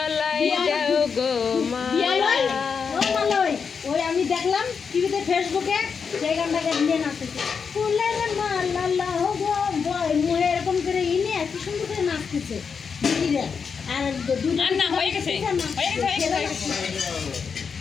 যাও গো মালা। ওই আমি দেখলাম টিভিতে ফেসবুকে সেই গানটাকে নিয়ে নাচতেছে, ফুলের মালা লগো মুহে এরকম করে ইনে কি সুন্দর করে নাচতেছে দিদিরা। আর আর না হয়ে গেছে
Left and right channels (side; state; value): right; quieter; 6.0 dB